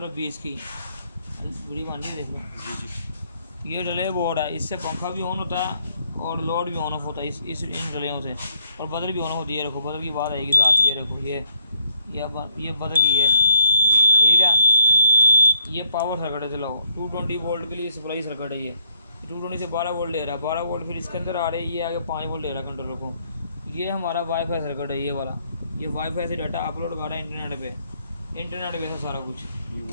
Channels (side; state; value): both; inverted; correlation -0.67